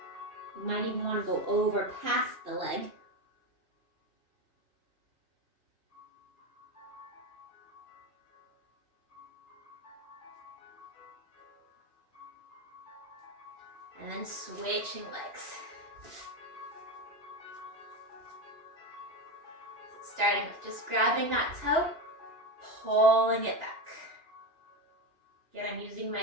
You might even want to go over past the leg. And then switching legs. Starting with just grabbing that toe, pulling it back. Again, I'm using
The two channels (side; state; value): left; late; 2.8 ms